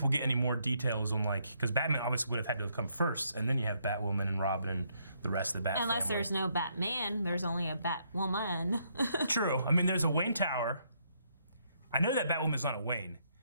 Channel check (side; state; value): both; inverted; correlation -0.73